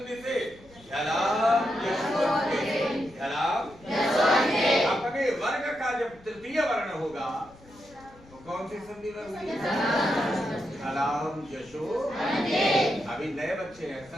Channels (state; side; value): noise; left; rumble, 24 dB below the sound